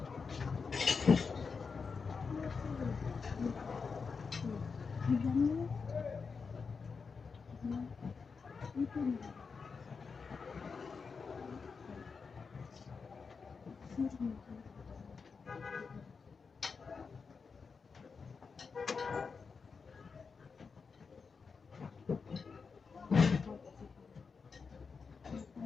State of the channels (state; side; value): quieter; right; 5.2 dB